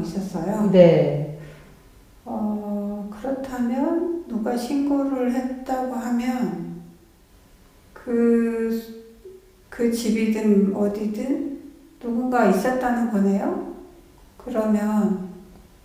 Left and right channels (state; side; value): identical; both; correlation 1.00